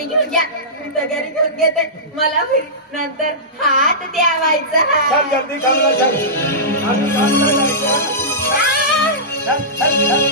घेऊन घ्या मी तर घरी घेऊन घेते मला नंतर हात द्यावायचा चल जल्दी कामला चल आम्ही कामला जायचं चल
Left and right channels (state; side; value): normal; both; correlation -0.17